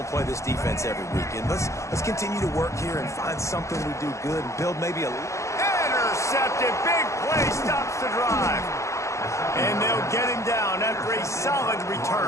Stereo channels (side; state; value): right; late; 0.14 ms